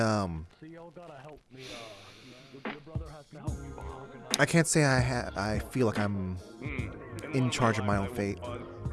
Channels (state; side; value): identical; both; correlation 1.00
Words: I can't say I feel like I'm in charge of my own fate.